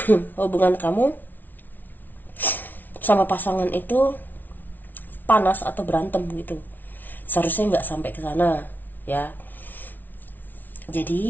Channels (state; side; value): late; right; 0.085 ms